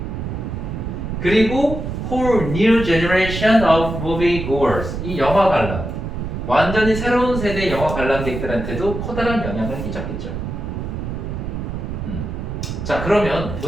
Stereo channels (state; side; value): noise; right; rumble, 5 dB below the sound